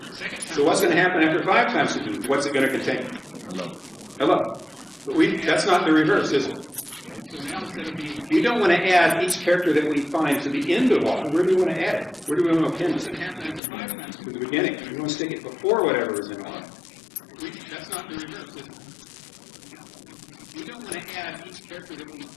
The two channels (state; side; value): drops out; right; at 13.6 s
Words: So what's going to happen after 5 times through the loop? What's it going to contain? Hello. But that's not the reverse, is it? We don't want to add each character that we find to the end of R. Where do we want to add it? Where do we want to append it? To the beginning. We want to stick it before whatever is in R. That's not the reverse, is it? We don't want to add each character that we